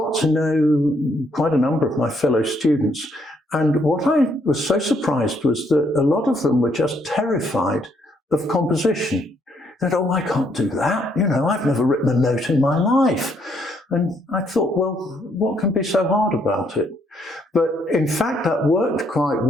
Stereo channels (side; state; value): both; normal; correlation 0.71